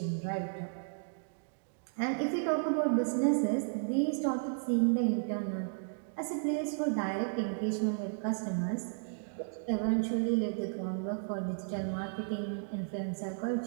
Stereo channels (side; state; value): left; silent; digital silence